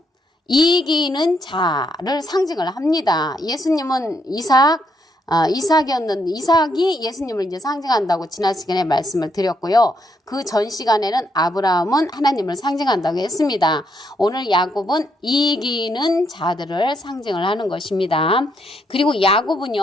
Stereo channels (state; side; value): normal; both; correlation 0.76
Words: 이기는 자를 상징을 합니다. 예수님은 이삭이 예수님을 이제 상징한다고 지난 시간에 말씀을 드렸고요. 그 전 시간에는 아브라함은 하나님을 상징한다고 했습니다. 오늘 야곱은 이기는 자들을 상징을 하는 것입니다. 그리고